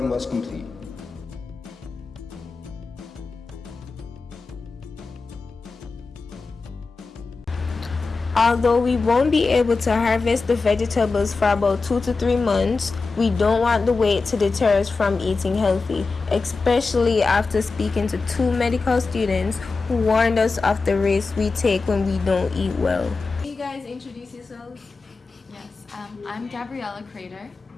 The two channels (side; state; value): right; quieter; 4.1 dB